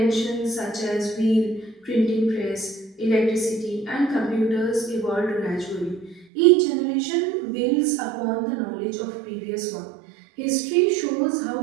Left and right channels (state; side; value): drops out; left; at 6.2 s